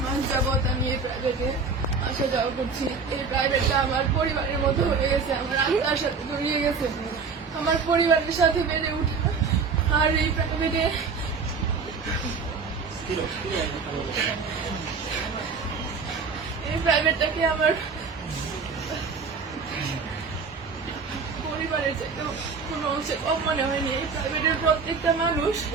মাস যাবত আমি এই প্রাইভেটে আসা যাওয়া করছি। এই প্রাইভেটটা আমার পরিবারের মতো হয়ে গেছে, আমার আত্মার সাথে জড়িয়ে গেছে, আমার পরিবারের সাথে বেড়ে উঠা। আর এই প্রাইভেটটাকে আমার পরিবারের চাইতে কোনো অংশে কম মনে হয়নি। এই প্রাইভেটের প্রত্যেকটা মানুষ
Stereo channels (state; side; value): quieter; left; 5.0 dB